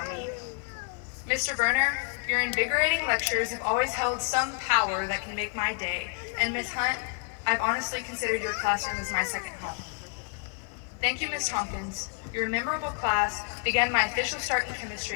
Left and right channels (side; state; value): right; quieter; 39.9 dB